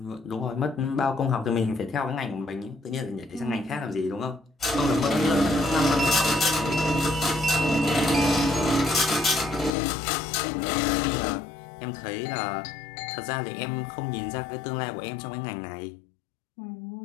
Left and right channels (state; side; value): drops out; right; at 9.7 s